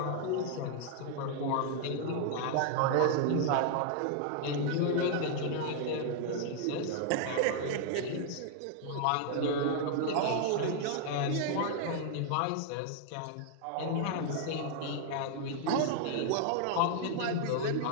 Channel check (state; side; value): different; both; correlation 0.00